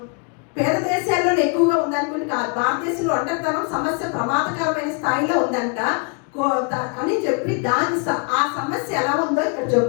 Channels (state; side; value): quieter; right; 34.6 dB